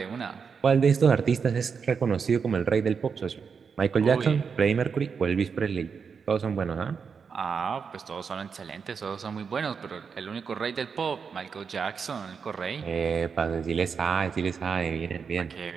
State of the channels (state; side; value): quieter; left; 6.0 dB